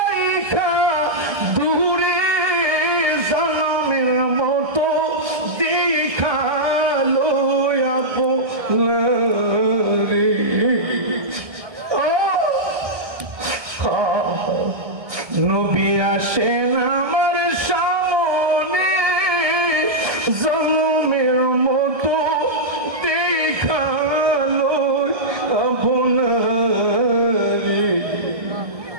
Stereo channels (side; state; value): left; late; 1.7 ms